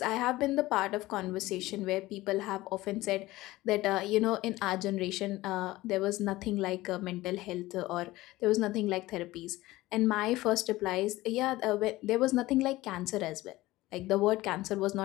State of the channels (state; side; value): quieter; right; 18.1 dB